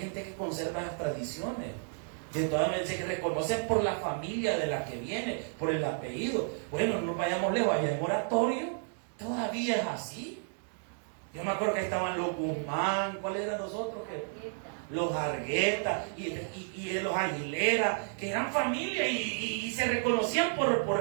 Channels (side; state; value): left; silent; 56 dB below the other